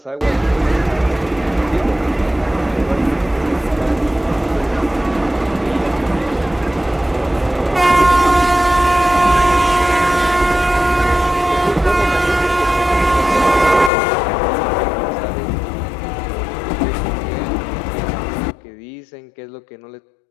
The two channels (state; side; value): drops out; right; at 13.9 s